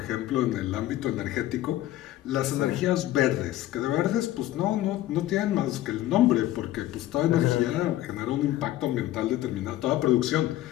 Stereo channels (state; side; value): quieter; right; 14.5 dB